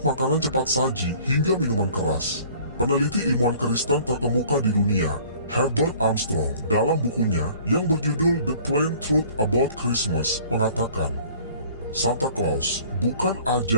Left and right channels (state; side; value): inverted; both; correlation -0.51